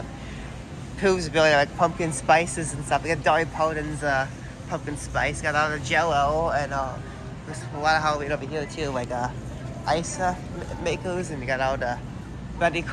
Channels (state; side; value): identical; both; correlation 1.00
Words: Pillsbury, like pumpkin spices and stuff. We got Dolly Parton's pumpkin spice. Got all the Jello and there's a lot of Halloween over here too, like ice makers, and you got all the Betty